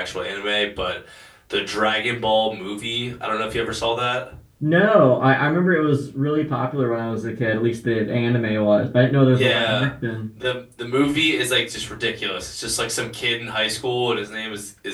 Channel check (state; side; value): identical; both; correlation 1.00